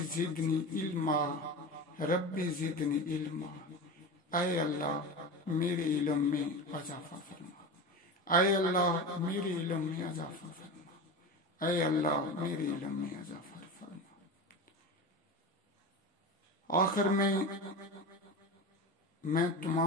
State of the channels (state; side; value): normal; both; correlation 0.26